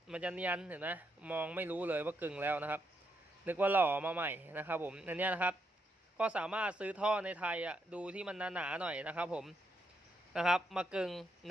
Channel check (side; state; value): both; normal; correlation 0.79